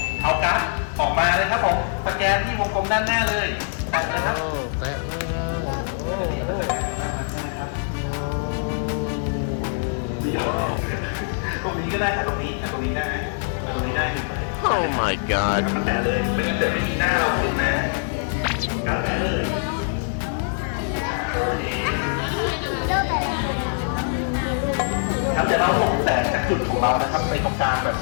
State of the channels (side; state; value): right; silent; digital silence